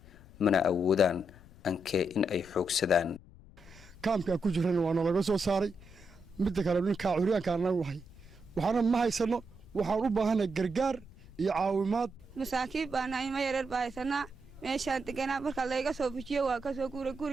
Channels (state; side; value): noise; left; rumble, 21 dB below the sound